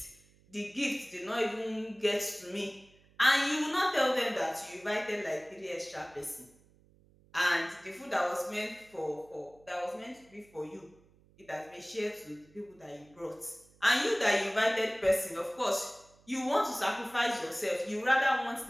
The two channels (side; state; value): right; noise; hum, 29 dB below the sound